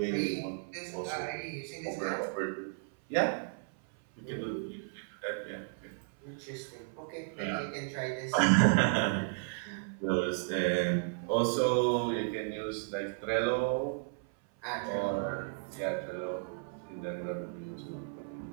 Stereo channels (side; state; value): left; silent; 55 dB below the other